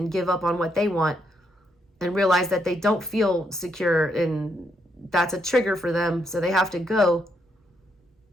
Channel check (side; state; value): both; normal; correlation 0.77